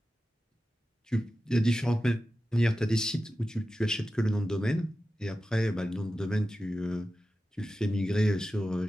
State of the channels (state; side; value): normal; both; correlation 0.93